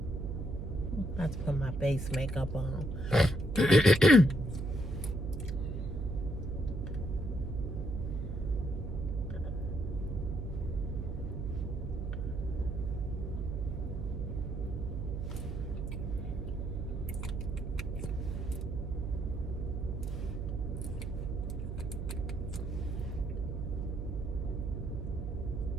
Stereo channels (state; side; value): noise; right; hum, 4 dB below the sound